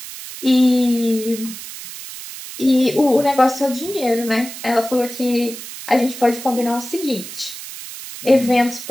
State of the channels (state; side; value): noise; right; hiss, 12 dB below the sound